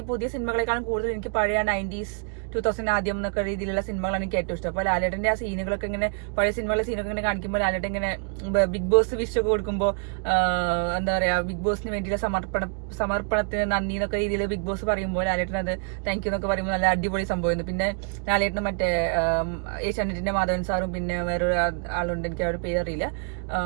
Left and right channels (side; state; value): left; quieter; 39.3 dB